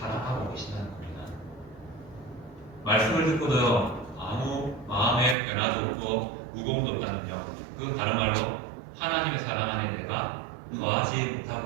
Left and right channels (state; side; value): drops out; left; at 5.4 s